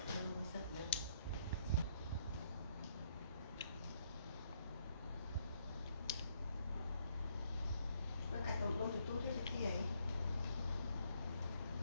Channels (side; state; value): both; inverted; correlation -0.69